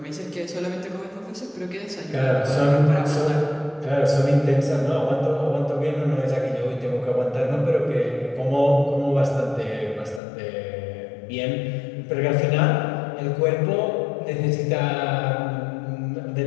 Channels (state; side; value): drops out; right; at 10.2 s